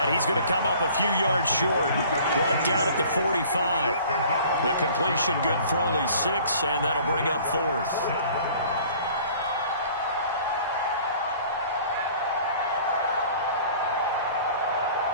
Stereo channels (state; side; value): inverted; both; correlation -0.50